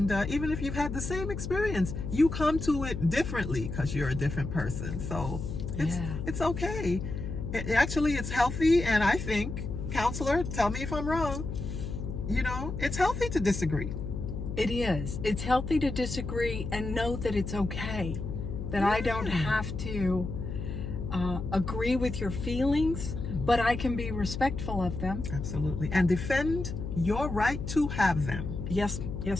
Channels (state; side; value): noise; left; hum, 5 dB below the sound